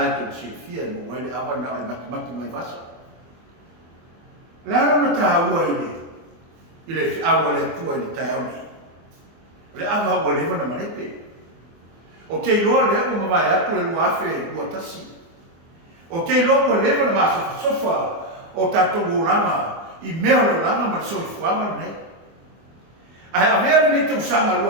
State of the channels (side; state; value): left; late; 24 ms